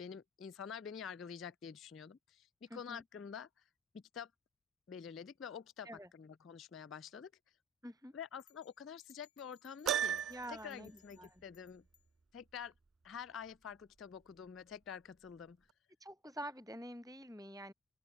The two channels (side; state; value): both; normal; correlation 0.36